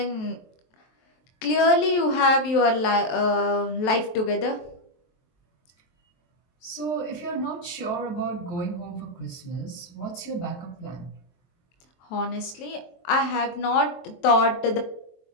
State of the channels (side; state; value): right; late; 23 ms